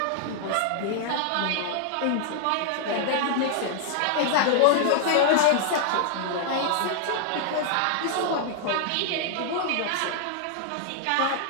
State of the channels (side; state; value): both; different; correlation 0.00